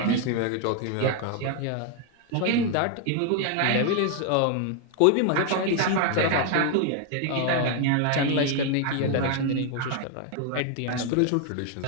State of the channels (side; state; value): both; different; correlation 0.01